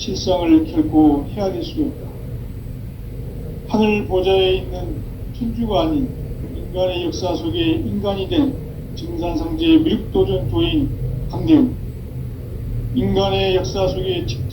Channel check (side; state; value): both; identical; correlation 1.00